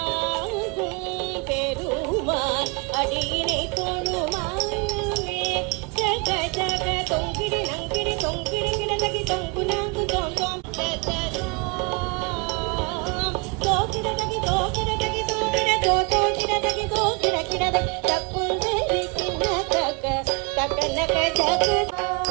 பெருமான் அடியினை தொழு மனமே ஜக ஜக தொங்கிடி நங்கிடி தொங்கிடி கிடதகி தொங்கு நாங்கு தோந்தோம் தோகிடதகி தோகிடதகி தோகிட தோகிடதகி தோகிட கிடதகி தக்குந்தரி கிண்ண தக்க தக்கனக ஜக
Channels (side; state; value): left; quieter; 30.4 dB